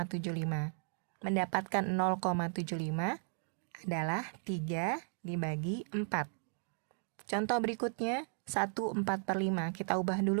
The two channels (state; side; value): silent; left; 54 dB below the other